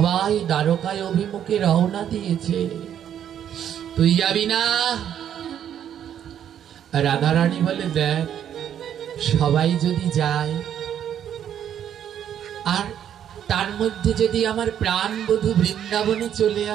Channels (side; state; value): left; quieter; 9.7 dB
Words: দ্বারকায় অভিমুখে রওনা দিয়েছে, তুই যাবি না? রাধারানী বলে, দেখ, সবাই যদি যায় আর তার মধ্যে যদি আমার প্রাণবধূ বৃন্দাবনে চলে